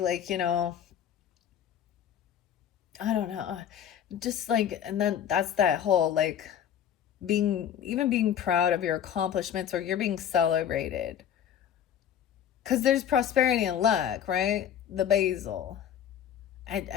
I don't know, just like, and then that's that whole like being proud of your accomplishments, or you're being celebrated. Because there's prosperity and luck, right? The basil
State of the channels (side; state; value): right; quieter; 9.4 dB